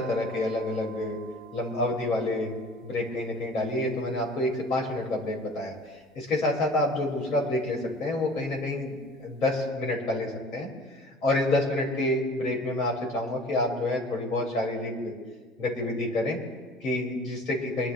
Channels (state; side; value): normal; both; correlation 0.46